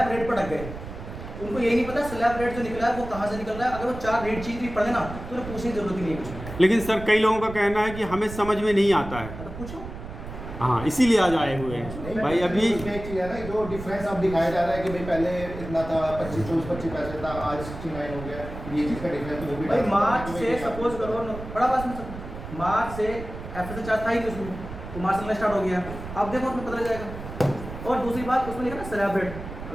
रेट पर अटक गए। उनको यही नहीं पता स्लैब रेट जो निकला है वो कहाँ से निकल रहा है। अगर वो 4 रेट चीज भी पढ़े ना तो उन्हें पूछने की जरूरत ही नहीं है कुछ। लेकिन सर कई लोगों का कहना है कि हमें समझ में नहीं आता है। तो पूछो। हाँ, इसीलिए आज आए हुए हैं भाई। अभी एक चीज है ना, जो डिफरेंस अब दिखाया जा रहा है कि भाई पहले इतना था 25 पैसे था, आज 69 हो गया। ये चीज का डिफरेंस वो भी भाई मार्च से सपोज करो बड़ा बात में मार्च से FSA चार्ज था ही नहीं उसमें, तो मार्च से स्टार्ट हो गया। अब देखो उसमें पता लग जाएगा। और दूसरी बात उसमें लिखा ना स्लैब रेट,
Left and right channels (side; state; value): right; noise; rumble, 11 dB below the sound